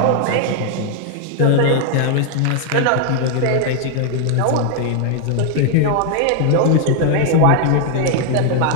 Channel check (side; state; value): both; different; correlation 0.00